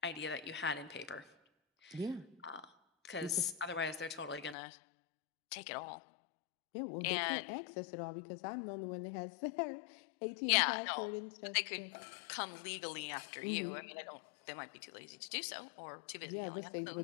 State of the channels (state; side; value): drops out; right; at 4.5 s